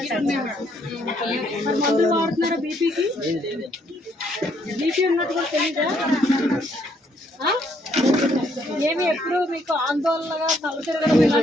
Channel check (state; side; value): normal; both; correlation 0.69